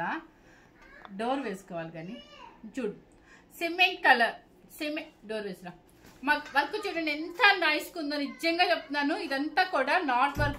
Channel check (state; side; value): identical; both; correlation 1.00